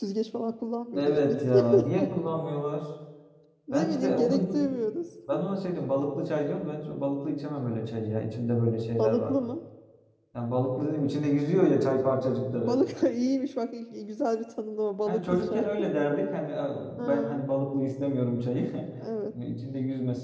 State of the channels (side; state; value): both; identical; correlation 1.00